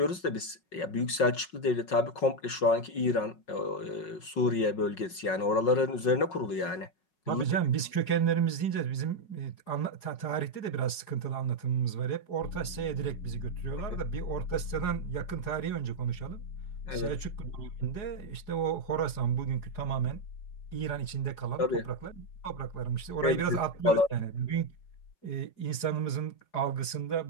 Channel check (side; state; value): right; late; 5.4 ms